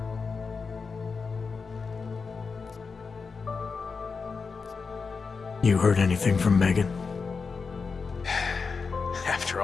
You heard anything from Megan? After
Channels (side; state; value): right; quieter; 5.0 dB